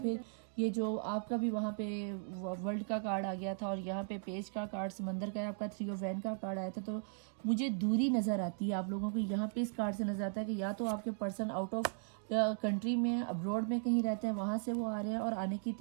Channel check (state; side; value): silent; left; digital silence